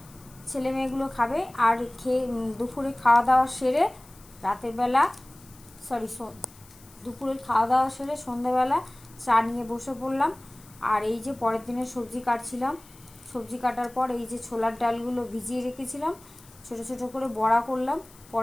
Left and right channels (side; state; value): left; noise; hiss, 24 dB below the sound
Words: ছেলে মেয়েগুলো খাবে, আর খেয়ে দুপুরে খাওয়া দাওয়া সেরে রাতের বেলা সরি দুপুরের খাওয়া দাওয়া সেরে সন্ধ্যেবেলা চা নিয়ে বসে পড়লাম। আর এই যে পরের দিনের সবজি কাটছিলাম, সবজি কাটার পর এই যে ছোলার ডালগুলো ভিজিয়ে রেখেছিলাম, ছোট ছোট করে বড়া করলাম,